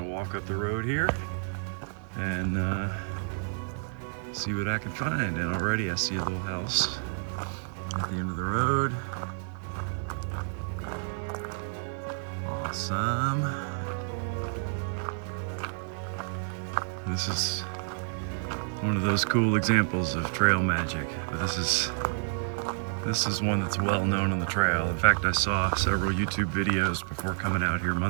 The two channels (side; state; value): left; silent; digital silence